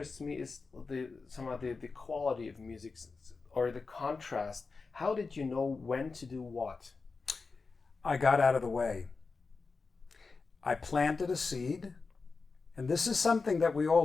me is some of the quality of music, or the contrast. How did you know when to do what? I got out of the way. I planted a seed, and this is something that we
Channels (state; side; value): quieter; right; 4.4 dB